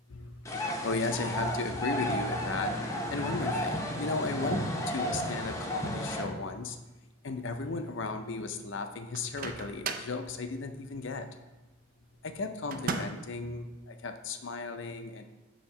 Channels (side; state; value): both; normal; correlation 0.20